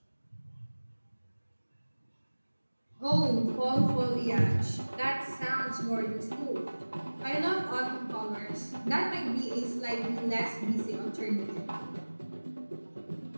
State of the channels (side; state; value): both; inverted; correlation -1.00